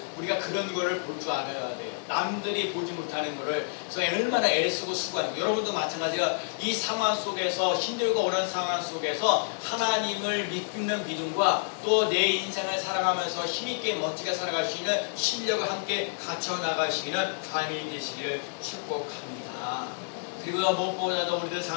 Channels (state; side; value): silent; right; digital silence